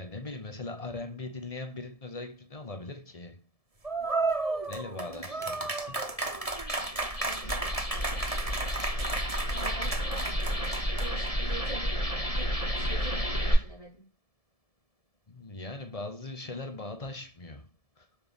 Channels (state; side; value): late; right; 1.7 ms